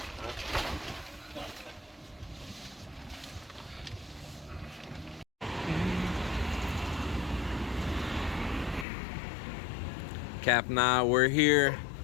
Cap and I, we're here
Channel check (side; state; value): right; drops out; at 8.8 s